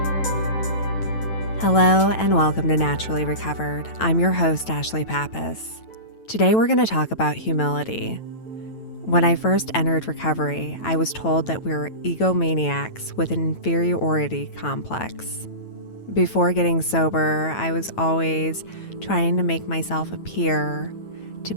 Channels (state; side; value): late; right; 9.1 ms